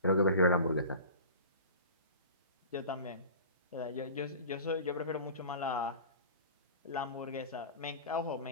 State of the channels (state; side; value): inverted; both; correlation -0.37